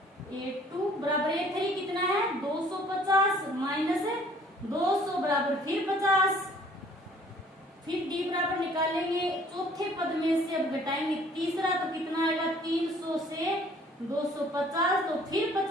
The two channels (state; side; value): normal; both; correlation 0.56